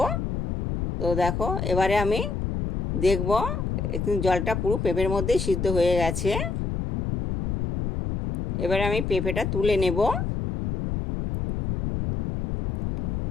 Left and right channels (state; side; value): noise; left; rumble, 3 dB below the sound